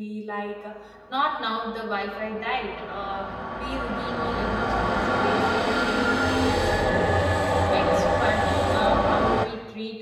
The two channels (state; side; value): identical; both; correlation 1.00